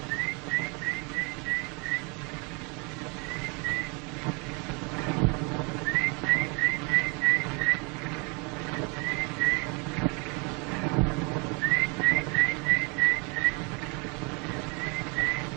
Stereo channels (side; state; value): left; quieter; 31.9 dB